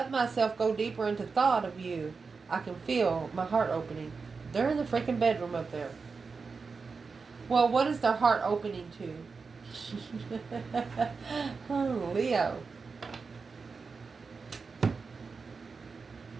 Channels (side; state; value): left; quieter; 4.8 dB